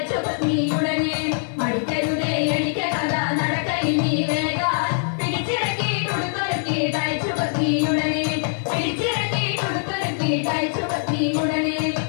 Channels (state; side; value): silent; right; 64 dB below the other